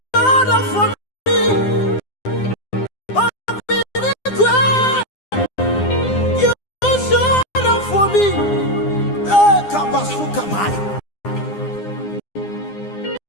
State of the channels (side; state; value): right; late; 9.8 ms